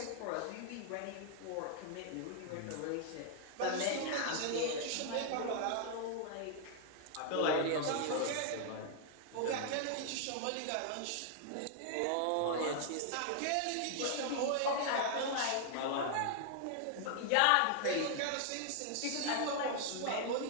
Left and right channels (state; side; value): different; both; correlation 0.00